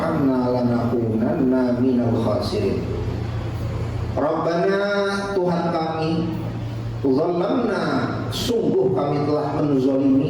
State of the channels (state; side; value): identical; both; correlation 1.00